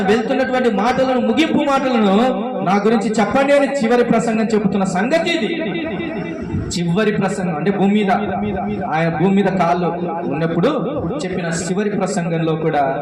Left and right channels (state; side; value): identical; both; correlation 1.00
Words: వెళ్తున్నటువంటి మాటలను, ముగింపు మాటలను నా గురించి చెప్పండి అని చివరి ప్రసంగం చెబుతున్న సంగతి ఇది. చివరి ప్రసంగం అంటే ఆయన భూమి మీద కాళ్ళు ఉన్నప్పుడు చెప్పిన చివరి ప్రసంగంలో కూడా